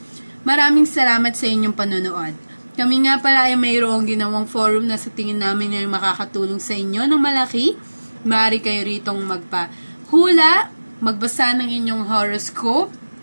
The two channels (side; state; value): both; inverted; correlation -1.00